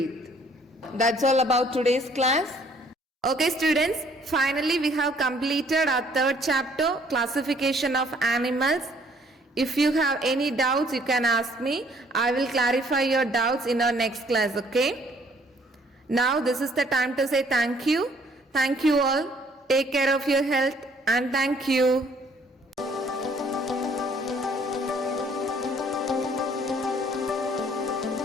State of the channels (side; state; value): both; normal; correlation 0.61